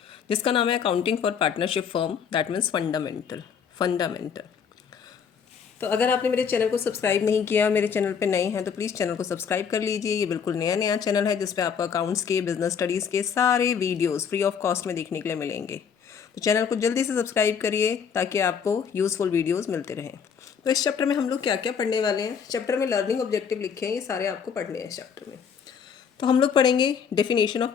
जिसका नाम है accounting for partnership firm, that means fundamental. तो अगर आपने मेरे चैनल को सब्सक्राइब नहीं किया, मेरे चैनल पे नए हैं तो प्लीज़ चैनल को सब्सक्राइब कर लीजिए। ये बिल्कुल नया चैनल है जिस पे आपको अकाउंट्स के, बिजनेस स्टडीज़ के सारे वीडियोज़ फ्री ऑफ कॉस्ट में देखने के लिए मिलेंगे। तो चैनल को जल्दी से सब्सक्राइब करिए ताकि आपको यूज़फुल वीडियोज़ मिलते रहें। तो इस चैप्टर में हम लोग क्या क्या पढ़ने वाले हैं, चैप्टर में लर्निंग ऑब्जेक्टिव लिखे हैं, ये सारे आपको पढ़ने हैं इस चैप्टर में। तो हम लोग पढ़ेंगे डेफिनेशन ऑफ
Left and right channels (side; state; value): right; quieter; 7.0 dB